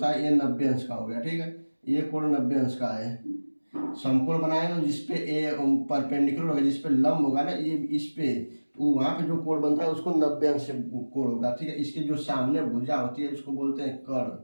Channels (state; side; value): inverted; both; correlation -1.00